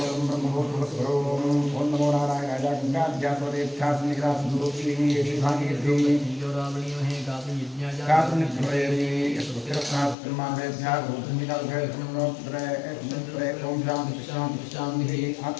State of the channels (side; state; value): right; drops out; at 10.2 s